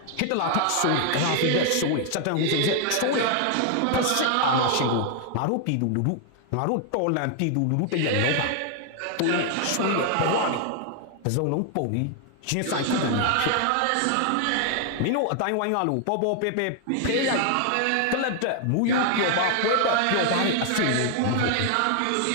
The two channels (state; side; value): different; both; correlation 0.00